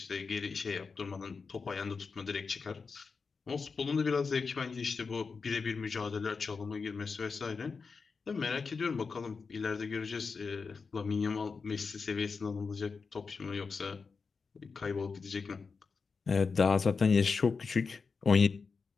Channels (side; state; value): right; quieter; 4.9 dB